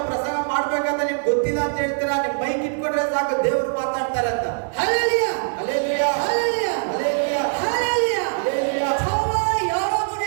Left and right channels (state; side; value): silent; left; digital silence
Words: ಪ್ರಸಂಗ ಮಾಡ್ಬೇಕಂತ ನಿಮ್ಗೆ ಗೊತ್ತಿಲ್ಲ ಅಂತ ಹೇಳ್ತೀರಾ, ನಿಮ್ ಮೈಕ್ ಇಟ್ಕೊಂಡ್ರೆ ಸಾಕು ದೇವರು ಮಾತಾಡ್ತಾರೆ ಅಂತ. 할렐루야! 할렐루야! 할렐루야! 할렐루야! 할렐루야! 할렐루야! 저와 여러분의